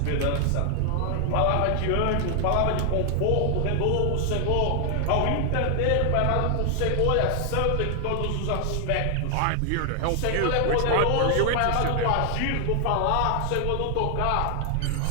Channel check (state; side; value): different; both; correlation 0.00